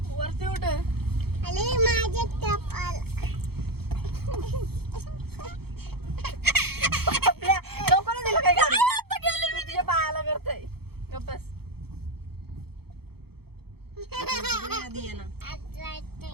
वरती उठ. लोकांना दिलं काय मी तुझ्या पायाला करतोय. बस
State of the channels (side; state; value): left; late; 0.96 ms